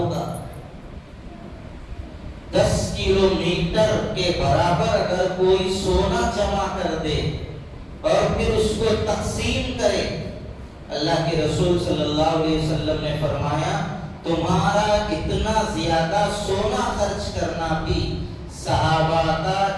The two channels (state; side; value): identical; both; correlation 1.00